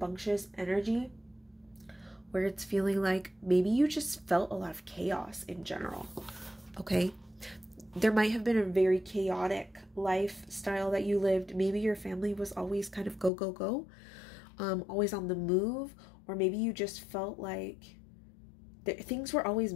energy where it's feeling like maybe you just felt a lot of chaos in general. Okay. there might have been a very chaotic lifestyle that you lived. Maybe your family was always kind of go, go, go, always on the move, or maybe you just felt like things were always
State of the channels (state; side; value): drops out; right; at 13.3 s